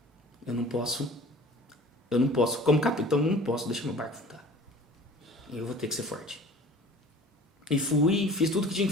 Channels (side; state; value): both; normal; correlation 0.45